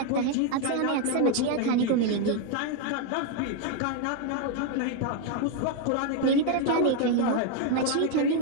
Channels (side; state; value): both; different; correlation 0.01